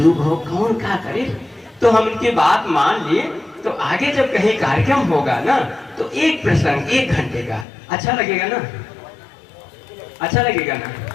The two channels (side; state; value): right; drops out; at 7.7 s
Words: हो कौन क्या करे। तो हम उनकी बात मान लिए। तो आगे जब कहीं कार्यक्रम होगा ना तो एक प्रसंग 1 घंटे का अच्छा लगेगा ना, अच्छा लगेगा ना।